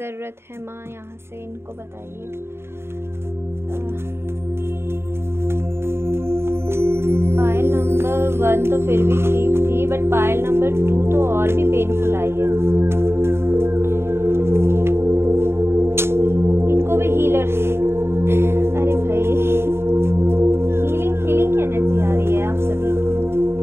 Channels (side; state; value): left; late; 0.12 ms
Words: है माँ, यहाँ से इनको बताइए। पायल नंबर 1 तो फिर भी ठीक थी, बट पायल नंबर 2 तो और भी पेनफुल आई है। इनको भी हीलर अरे भाई, हीलिंग की एनर्जी आ रही है आप सभी।